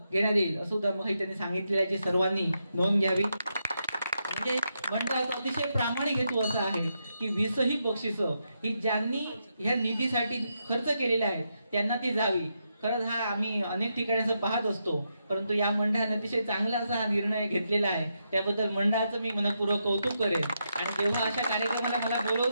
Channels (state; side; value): inverted; both; correlation -0.83